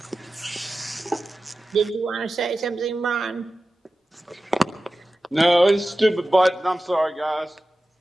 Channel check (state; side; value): normal; both; correlation 0.94